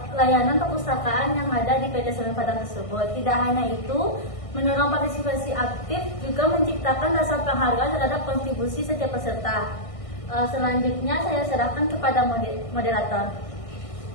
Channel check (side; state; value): right; late; 1.6 ms